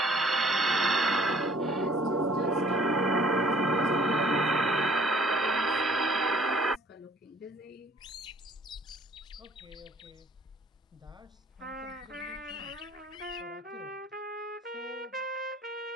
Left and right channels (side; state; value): both; normal; correlation 0.57